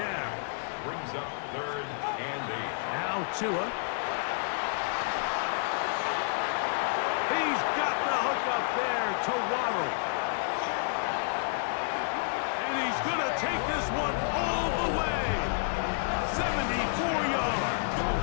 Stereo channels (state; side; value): silent; right; digital silence